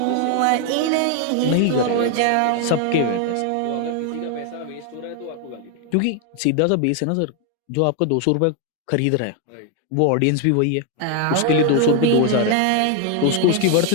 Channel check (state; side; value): different; both; correlation 0.00